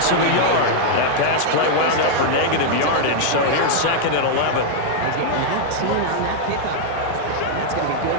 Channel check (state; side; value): different; both; correlation -0.01